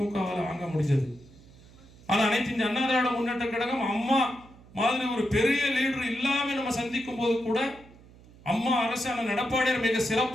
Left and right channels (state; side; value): noise; right; hum, 23 dB below the sound